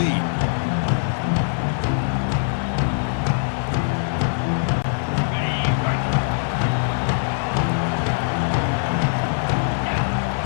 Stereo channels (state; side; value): silent; right; digital silence